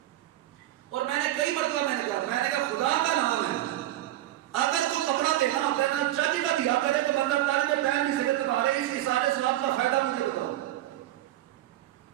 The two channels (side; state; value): left; quieter; 14.6 dB